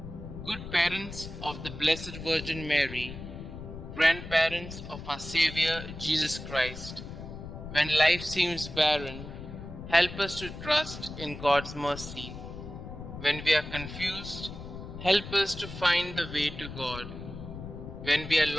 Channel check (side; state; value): left; noise; rumble, 10 dB below the sound